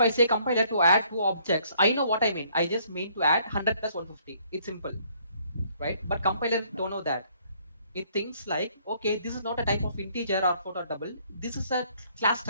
say compiler to add two objects, I know what I mean. I just mean to add 100 plus 150. It's simple, right? But compiler don't know that. It thinks like, okay, this is not a type of integer or float or double. This is a class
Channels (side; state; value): both; inverted; correlation -0.64